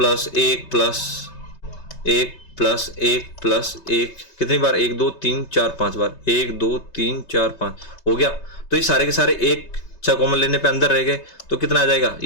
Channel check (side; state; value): right; late; 5.2 ms